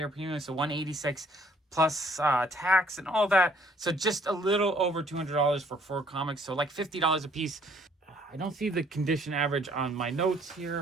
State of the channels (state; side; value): normal; both; correlation 0.62